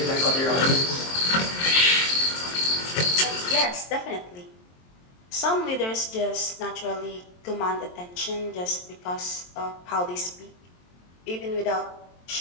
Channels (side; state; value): right; late; 23 ms